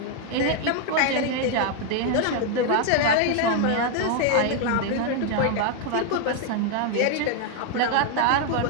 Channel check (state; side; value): different; both; correlation 0.00